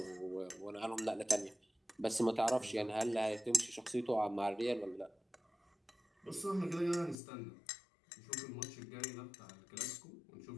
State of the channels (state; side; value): drops out; right; at 7.2 s